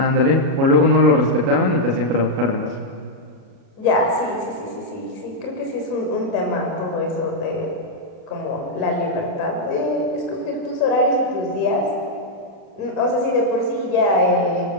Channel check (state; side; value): late; left; 37 ms